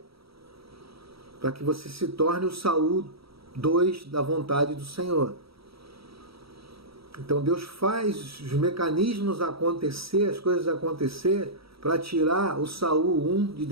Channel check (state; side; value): late; left; 0.76 ms